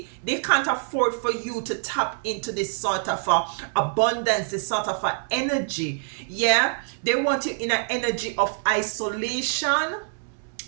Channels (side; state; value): left; silent; 62 dB below the other